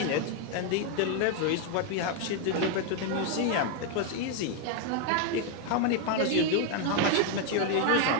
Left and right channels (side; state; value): both; different; correlation 0.01